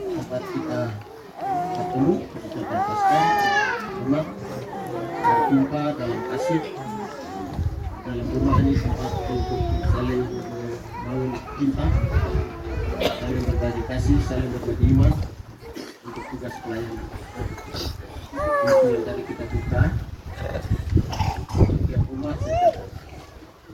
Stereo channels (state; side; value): identical; both; correlation 1.00